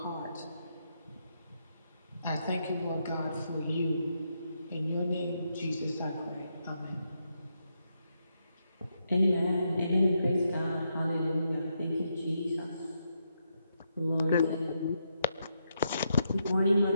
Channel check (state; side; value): inverted; both; correlation -0.81